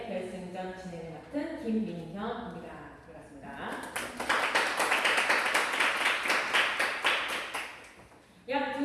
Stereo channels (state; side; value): identical; both; correlation 1.00